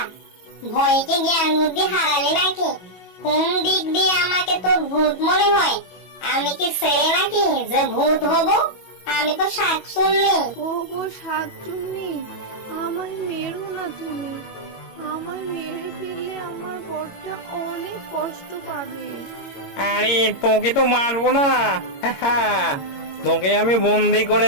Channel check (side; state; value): right; late; 22 ms